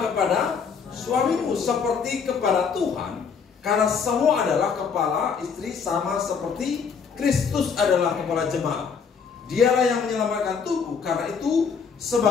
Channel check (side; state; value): right; quieter; 6.1 dB